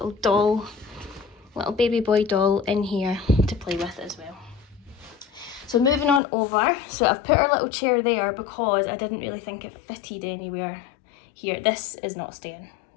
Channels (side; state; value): right; drops out; at 6.2 s